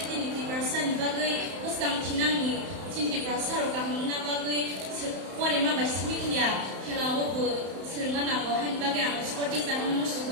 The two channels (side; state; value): left; late; 31 ms